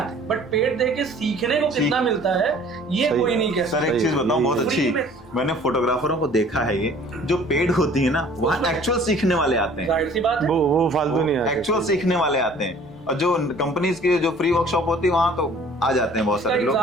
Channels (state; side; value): normal; both; correlation 0.51